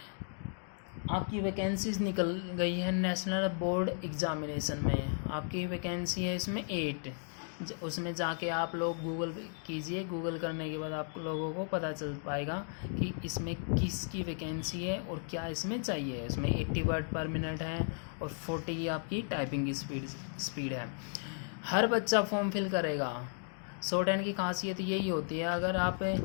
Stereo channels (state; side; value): silent; right; 54 dB below the other